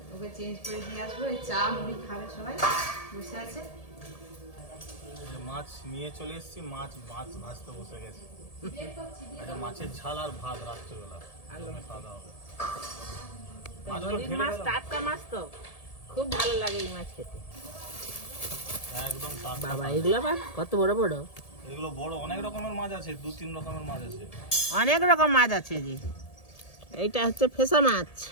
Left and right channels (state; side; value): late; right; 1.7 ms